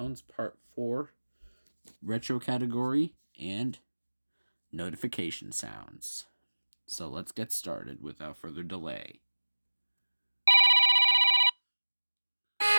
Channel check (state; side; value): inverted; both; correlation -1.00